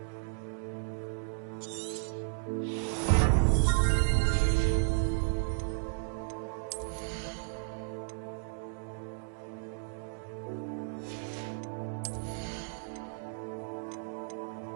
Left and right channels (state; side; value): silent; left; digital silence